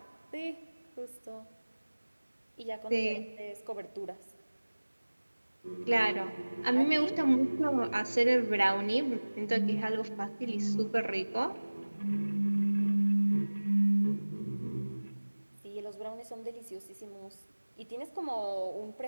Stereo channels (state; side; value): inverted; both; correlation -1.00